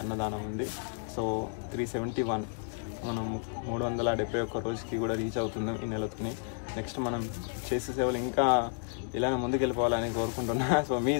అన్నదానం ఉంది. సో 371 మనం 371 రోజుకి కూడా రీచ్ అవుతున్నాం ఈ నెలతోని. నెక్స్ట్ మనం చేసే సేవలు ఇంకా ఇలానే ముందుకెళ్ళిపోవాలని కోరుకుంటున్నా. సో మీ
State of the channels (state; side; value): silent; right; 57 dB below the other